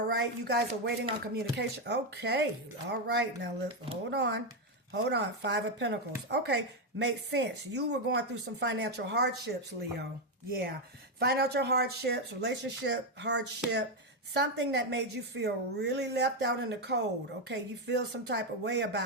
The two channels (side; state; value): both; normal; correlation 0.05